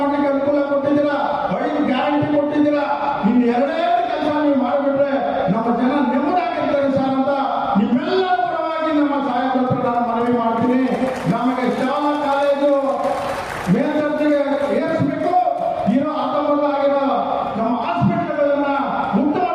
ಅನುಕೂಲ ಕೊಟ್ಟಿದ್ದೀರಾ, 5 ಗ್ಯಾರಂಟಿ ಕೊಟ್ಟಿದ್ದೀರಾ. ಇನ್ನು 2 ಕೆಲಸ ನೀವು ಮಾಡಿಬಿಟ್ರೆ ನಮ್ಮ ಜನ ನೆಮ್ಮದಿಯಾಗಿರ್ತಾರೆ ಸರ್ ಅಂತ ನಿಮ್ಮೆಲ್ಲರ ಪರವಾಗಿ ನಮ್ಮ ಸಾಹೇಬ್ರ ಹತ್ರ ನಾನು ಮನವಿ ಮಾಡ್ತೀನಿ. ನಮಗೆ ಶಾಲಾ ಕಾಲೇಜು ಮೇಲ್ದರ್ಜೆಗೆ ಏರಿಸಬೇಕು. ಇರೋ ಆಗಿರೋ ನಮ್ಮ ಹಾಸ್ಪಿಟಲ್ಗಳನ್ನ ಉತ್ತಮ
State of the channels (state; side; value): identical; both; correlation 1.00